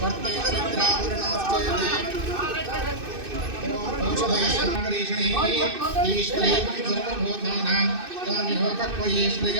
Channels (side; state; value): left; late; 2.6 ms